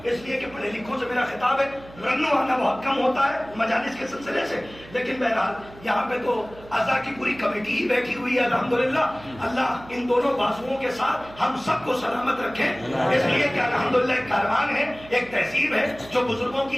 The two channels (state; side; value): noise; right; hum, 20 dB below the sound